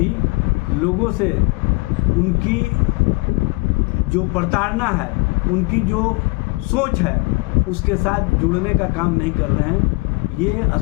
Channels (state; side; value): quieter; right; 27.8 dB